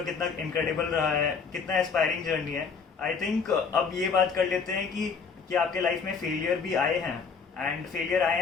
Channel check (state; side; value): quieter; right; 5.5 dB